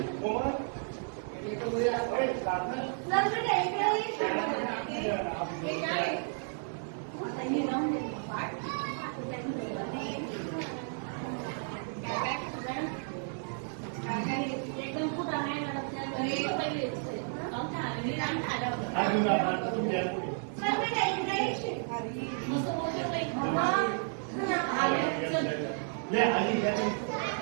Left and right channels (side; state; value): left; silent; 56 dB below the other